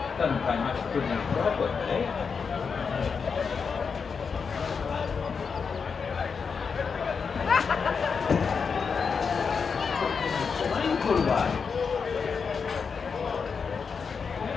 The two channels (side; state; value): right; quieter; 5.7 dB